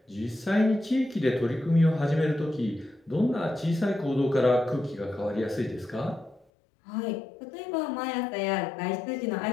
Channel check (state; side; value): drops out; right; at 6.5 s